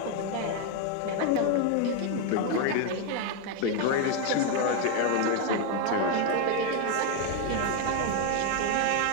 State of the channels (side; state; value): both; different; correlation 0.01